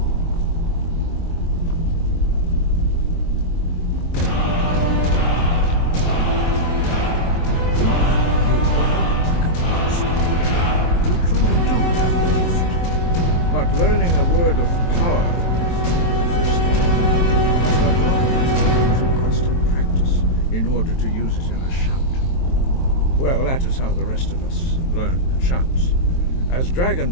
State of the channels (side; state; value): right; late; 23 ms